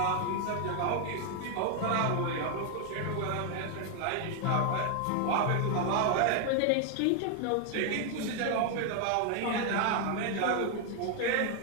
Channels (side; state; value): both; different; correlation 0.00